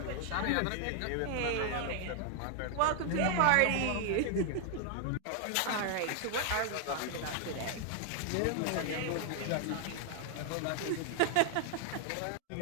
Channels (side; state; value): both; different; correlation 0.00